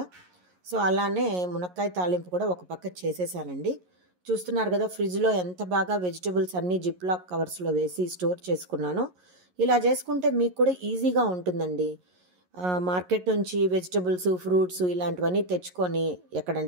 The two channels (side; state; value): left; late; 11 ms